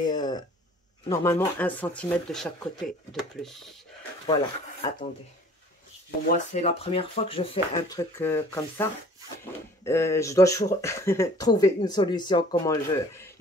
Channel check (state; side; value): normal; both; correlation 0.51